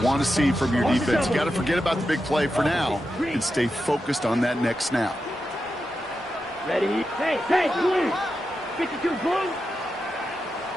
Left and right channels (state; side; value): normal; both; correlation 0.89